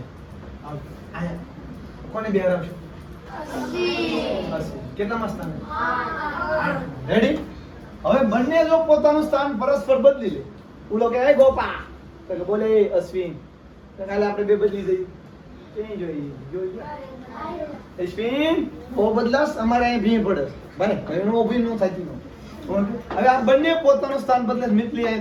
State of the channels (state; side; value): identical; both; correlation 1.00